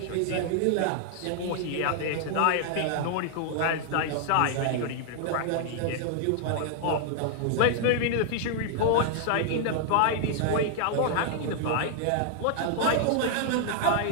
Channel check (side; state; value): both; different; correlation 0.00